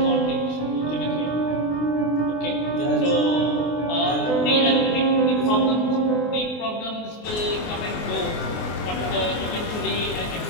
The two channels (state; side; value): late; right; 24 ms